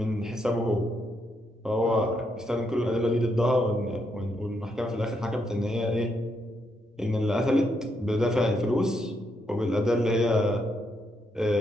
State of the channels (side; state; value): both; normal; correlation 0.78